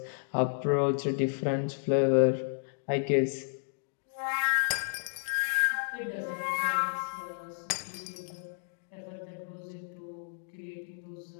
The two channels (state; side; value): silent; right; digital silence